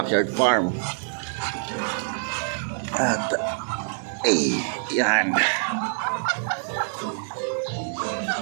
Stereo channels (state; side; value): silent; left; digital silence